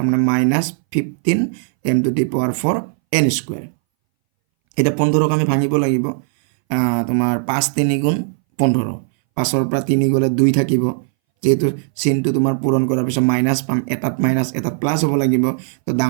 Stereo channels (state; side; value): silent; left; 63 dB below the other